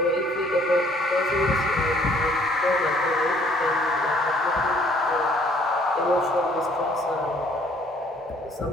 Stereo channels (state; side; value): normal; both; correlation 0.61